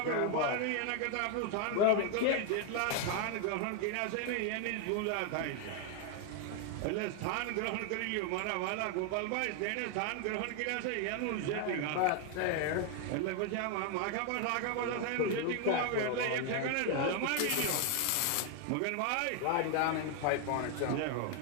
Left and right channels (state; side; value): different; both; correlation 0.01